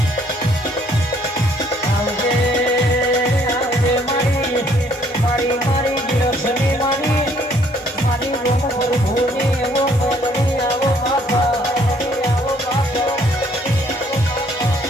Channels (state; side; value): normal; both; correlation 0.63